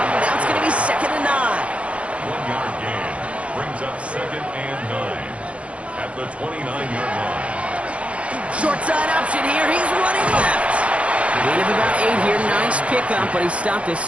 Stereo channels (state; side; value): late; left; 0.062 ms